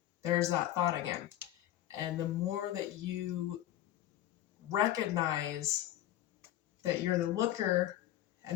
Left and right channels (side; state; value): right; quieter; 13.2 dB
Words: There's that thought again. And the more that you recognize that you're the looker